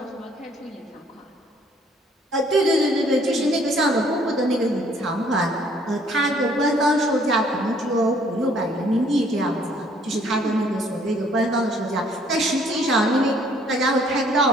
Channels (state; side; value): normal; both; correlation 0.62